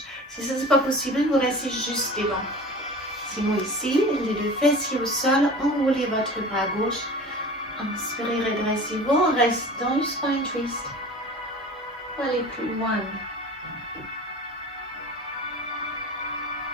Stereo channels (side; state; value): both; normal; correlation 0.38